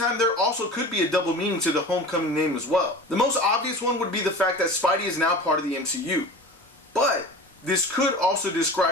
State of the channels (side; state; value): both; normal; correlation 0.36